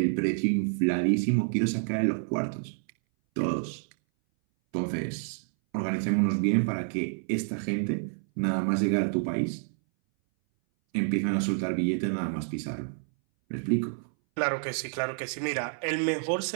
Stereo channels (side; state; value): left; silent; 59 dB below the other